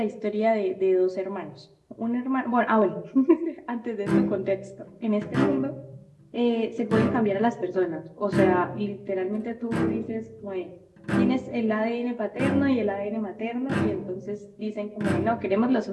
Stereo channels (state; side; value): identical; both; correlation 1.00